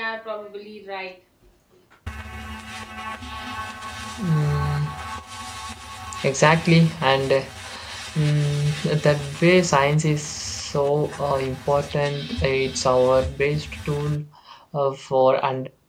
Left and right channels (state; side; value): identical; both; correlation 1.00